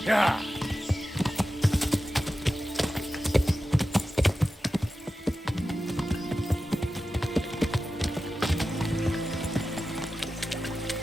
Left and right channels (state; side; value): normal; both; correlation 0.93